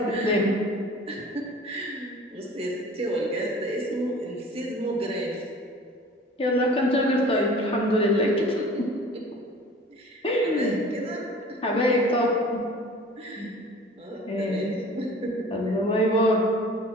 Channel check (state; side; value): normal; both; correlation 0.45